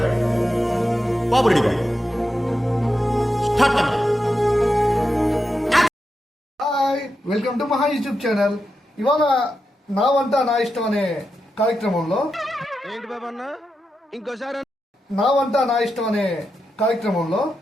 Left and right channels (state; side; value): normal; both; correlation 0.88